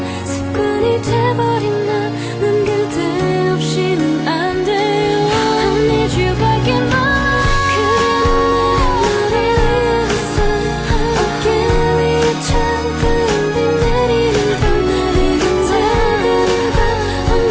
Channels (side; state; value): both; identical; correlation 1.00